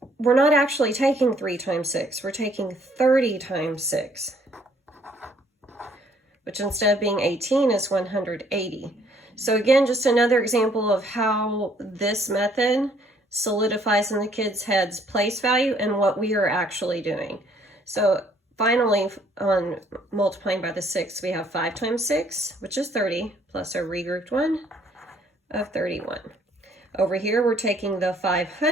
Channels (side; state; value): both; normal; correlation 0.63